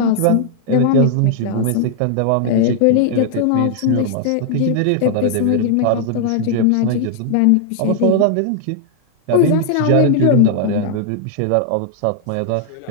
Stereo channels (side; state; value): both; different; correlation 0.00